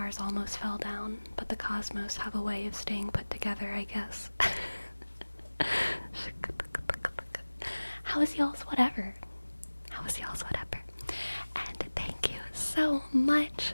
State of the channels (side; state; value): both; inverted; correlation -1.00